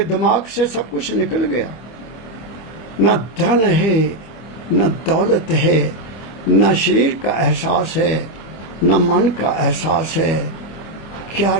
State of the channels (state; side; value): late; right; 25 ms